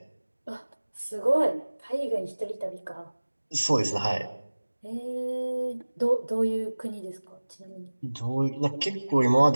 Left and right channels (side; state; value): both; inverted; correlation -1.00